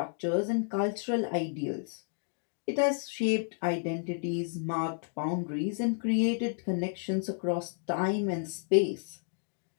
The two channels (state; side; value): silent; right; digital silence